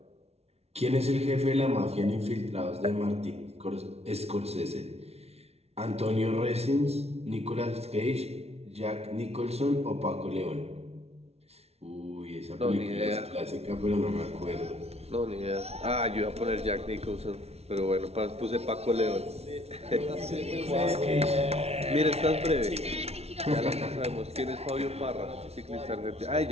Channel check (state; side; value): late; left; 0.31 ms